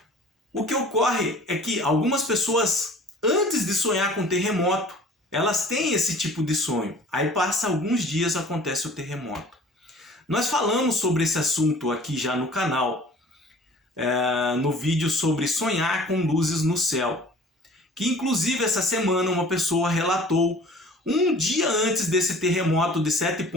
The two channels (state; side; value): normal; both; correlation 0.48